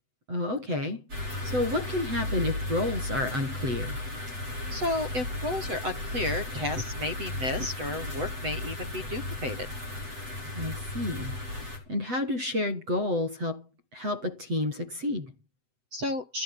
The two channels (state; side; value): late; left; 7.9 ms